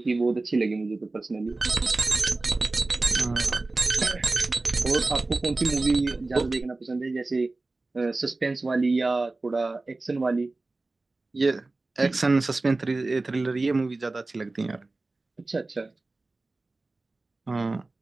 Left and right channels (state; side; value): quieter; left; 3.3 dB